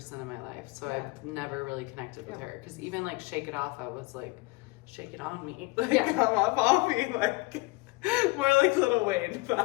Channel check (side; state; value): right; quieter; 23.8 dB